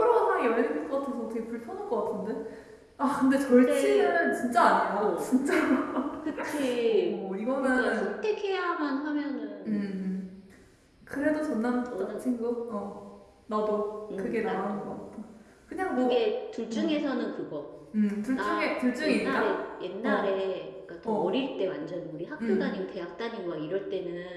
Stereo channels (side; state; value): both; identical; correlation 1.00